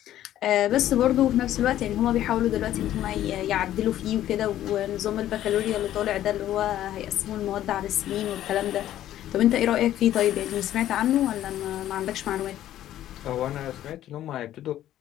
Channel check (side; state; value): right; quieter; 12.6 dB